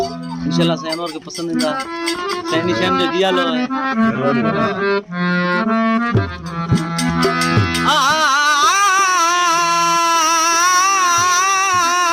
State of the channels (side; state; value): both; identical; correlation 1.00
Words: इंशाल्लाह साईं अनवर के पसंदीदा साईं निशान जो दिया लो है